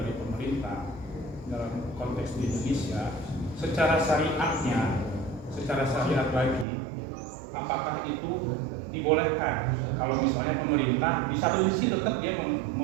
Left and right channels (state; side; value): drops out; left; at 6.7 s